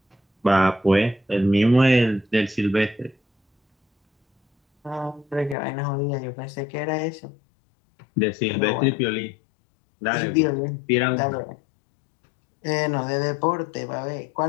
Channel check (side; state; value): right; drops out; at 5.6 s